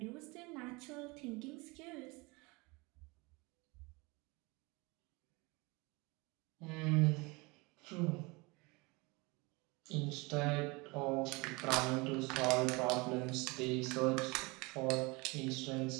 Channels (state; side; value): quieter; left; 26.0 dB